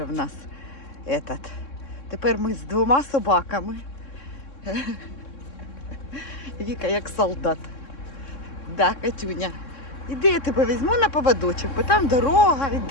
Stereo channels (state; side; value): late; right; 3.6 ms